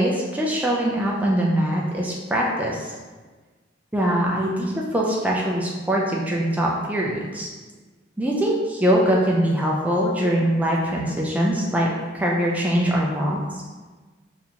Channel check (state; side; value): normal; both; correlation 0.61